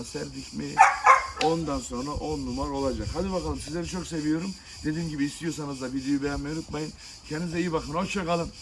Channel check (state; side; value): identical; both; correlation 1.00